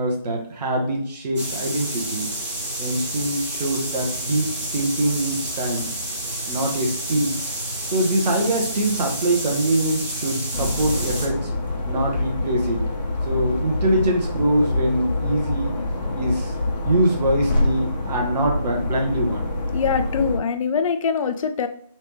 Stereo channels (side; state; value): both; inverted; correlation -0.68